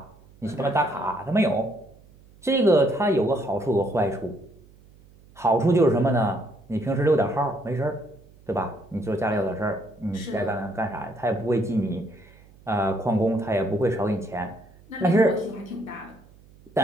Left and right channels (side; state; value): right; noise; hum, 26 dB below the sound